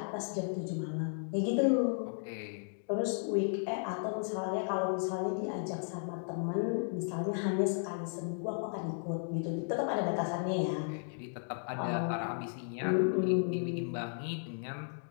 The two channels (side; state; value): right; silent; digital silence